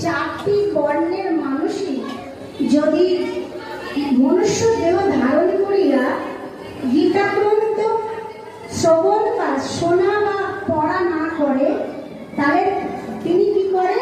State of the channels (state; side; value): identical; both; correlation 1.00